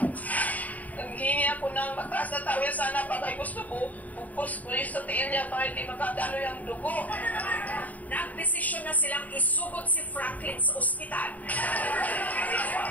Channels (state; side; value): late; right; 0.075 ms